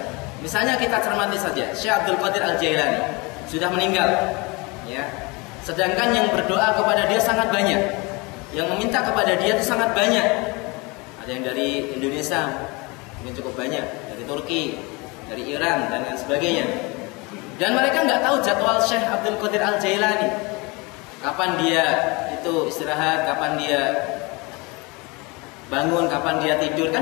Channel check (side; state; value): right; quieter; 26.9 dB